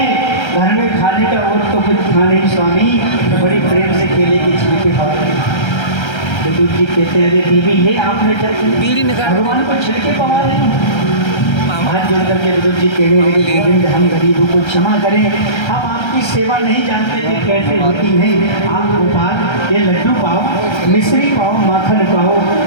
घर में खाने का और तो कुछ खा नहीं स्वामी, तो बड़ी प्रेम से केले के छिलके खाते। विदुर जी कहते हैं अरे देवी ये आपने भगवान को छिलके पवा रहे हैं। हाथ जोड़ करके विदुर जी कहने लगे गोविंद हम गरीबों को क्षमा करें, हम आपकी सेवा नहीं जानते थे कैसे होती है। आप गोपाल ये लड्डू पाओ, मिश्री पाओ, माखन पाओ।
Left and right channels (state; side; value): late; right; 1.3 ms